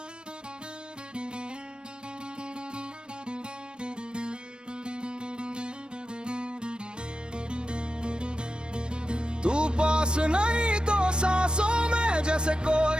तू पास नहीं तो सांसों में जैसे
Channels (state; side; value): late; left; 0.053 ms